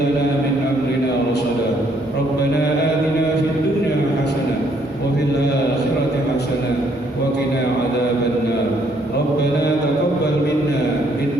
لنا من أمرنا رشدا. ربنا آتنا في الدنيا حسنة وفي الآخرة حسنة وقنا عذاب النار. ربنا تقبل منا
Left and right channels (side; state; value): both; normal; correlation 0.68